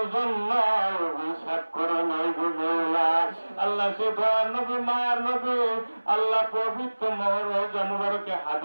জন্য অভিশাপ করে নাই গো মওলা আল্লাহ সে দয়ার নবী মায়ার নবী আল্লাহ পবিত্র রওজা মুবারকে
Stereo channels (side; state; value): both; inverted; correlation -1.00